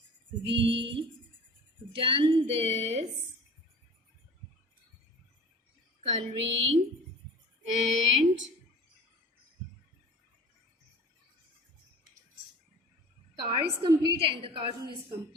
we done this coloring and car is complete and the cartoon is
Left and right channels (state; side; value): normal; both; correlation 0.41